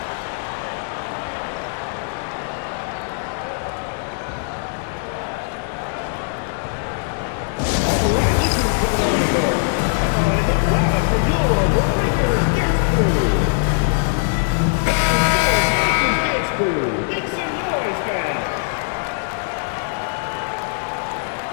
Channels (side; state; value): right; silent; digital silence